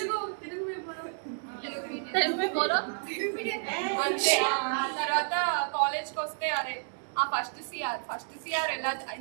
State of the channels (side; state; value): left; silent; digital silence